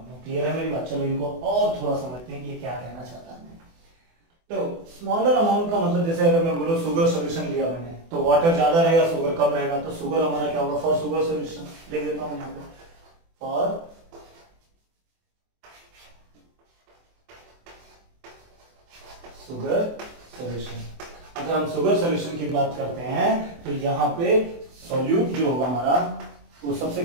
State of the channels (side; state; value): left; late; 24 ms